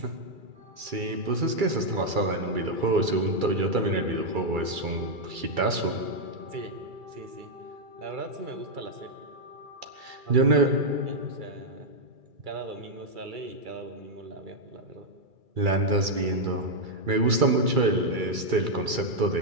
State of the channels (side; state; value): left; late; 2.3 ms